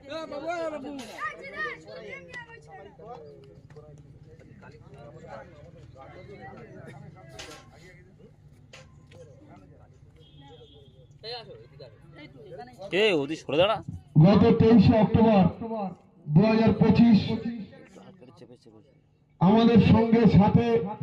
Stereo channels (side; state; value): both; identical; correlation 1.00